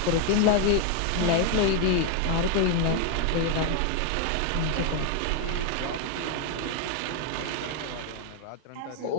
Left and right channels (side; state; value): both; different; correlation 0.00